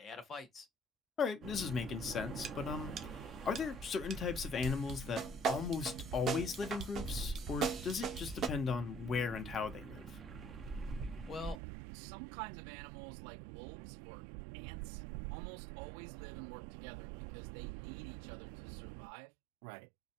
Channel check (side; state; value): left; drops out; at 11.6 s